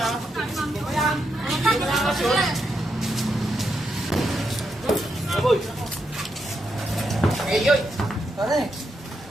Aboy! Ngayon. Pare,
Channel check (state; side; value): normal; both; correlation 0.82